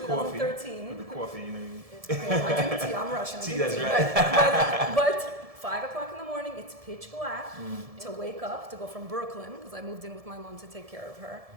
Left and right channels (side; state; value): left; late; 1.7 ms